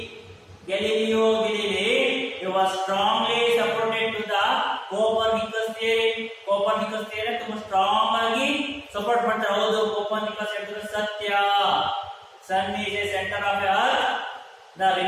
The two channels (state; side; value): identical; both; correlation 1.00